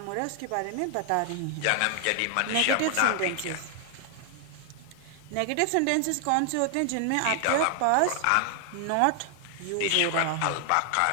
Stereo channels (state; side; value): different; both; correlation 0.00